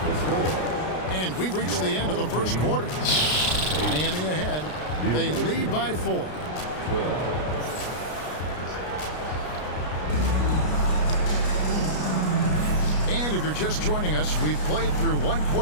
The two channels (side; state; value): right; late; 33 ms